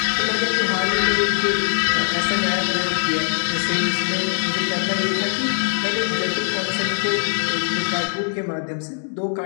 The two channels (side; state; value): right; silent; 65 dB below the other